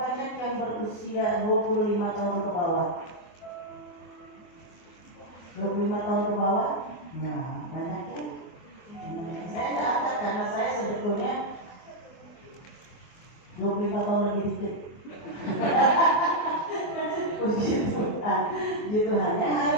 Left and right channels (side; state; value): right; late; 24 ms